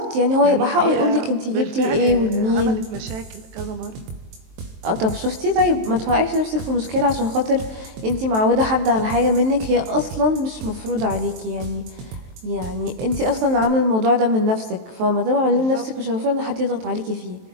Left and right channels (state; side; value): late; left; 23 ms